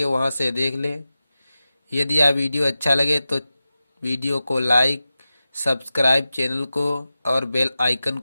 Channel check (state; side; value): inverted; both; correlation -0.94